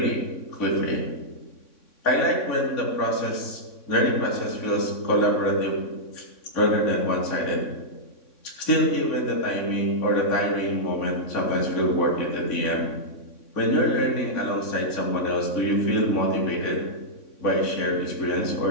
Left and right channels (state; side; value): late; right; 3.6 ms